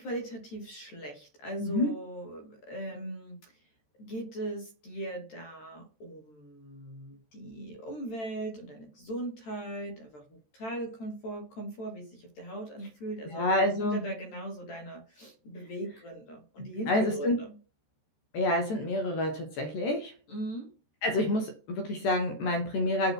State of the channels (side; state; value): right; late; 14 ms